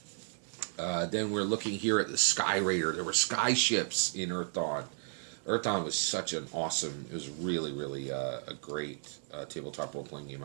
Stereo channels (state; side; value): silent; left; 55 dB below the other